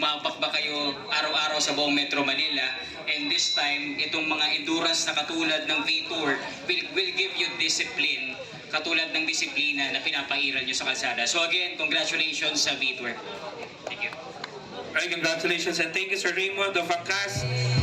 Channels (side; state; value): both; identical; correlation 1.00